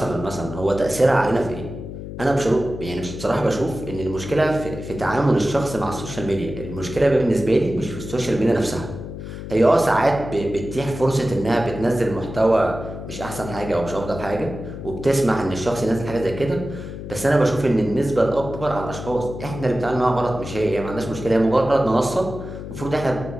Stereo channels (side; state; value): left; noise; hum, 9 dB below the sound